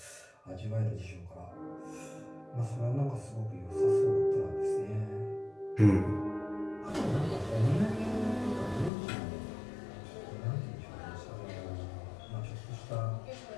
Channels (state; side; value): drops out; right; at 8.9 s